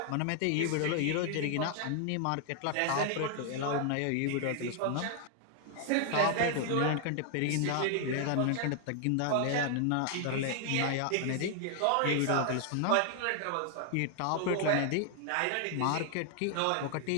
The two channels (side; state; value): both; different; correlation 0.00